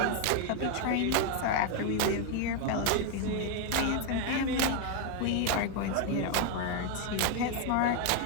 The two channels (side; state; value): both; different; correlation 0.01